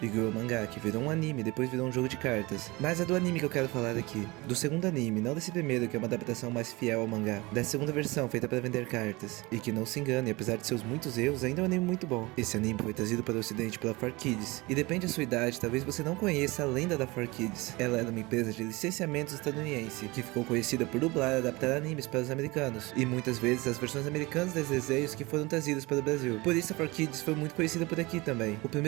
Yu-Gi-Oh! Mangá, que virou um anime, depois virou um jogo de cartas. Mas é do anime que eu quero falar aqui. Do segundo anime, não desse primeiro, que é uma adaptação mais fiel ao mangá. Da segunda versão, feita para vender cartas. E que não se engane, apesar de seus muitos erros, ainda é um anime muito bom. Esse anime foi trazido para o ocidente pela 4Kids. E depende da sua idade, talvez você não conheça a lenda da 4Kids. Ela era uma empresa de licenciamentos estadunidense, que ficou conhecida por dublar e adaptar animes para os americanos. E muitas vezes as versões americanas desses desenhos que foram trazidas para o Brasil. Por isso a 4Kids foi muito conhecida por aqui também. O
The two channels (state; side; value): quieter; left; 23.2 dB